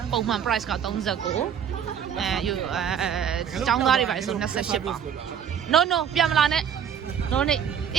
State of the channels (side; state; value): left; quieter; 8.2 dB